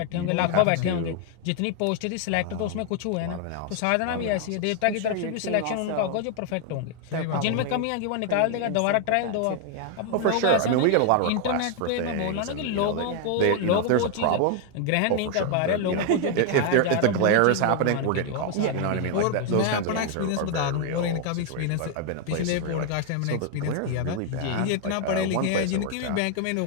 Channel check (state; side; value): different; both; correlation 0.00